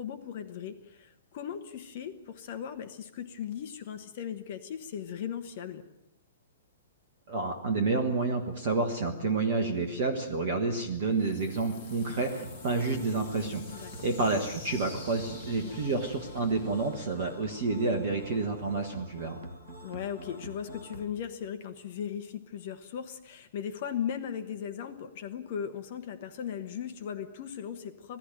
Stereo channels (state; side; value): inverted; both; correlation -0.39